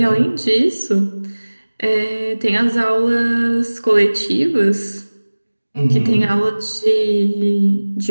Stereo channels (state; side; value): inverted; both; correlation -1.00